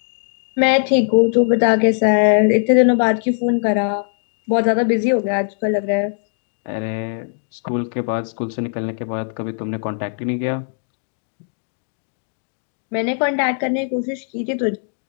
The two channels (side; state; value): right; silent; 65 dB below the other